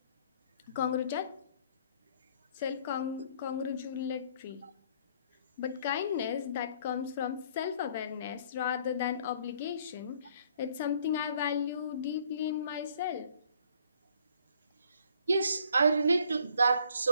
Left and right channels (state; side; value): inverted; both; correlation -0.61